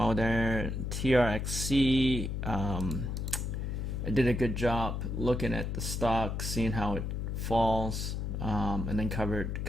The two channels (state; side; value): noise; left; hum, 2 dB below the sound